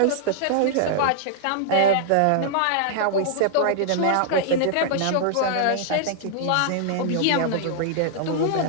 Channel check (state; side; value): different; both; correlation -0.01